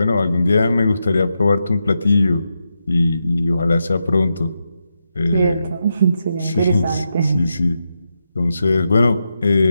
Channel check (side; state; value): both; inverted; correlation -0.86